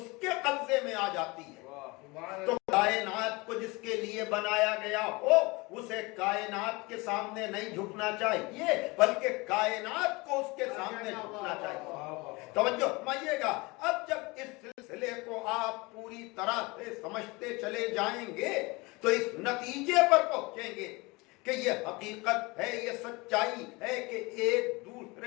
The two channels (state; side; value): quieter; right; 24.8 dB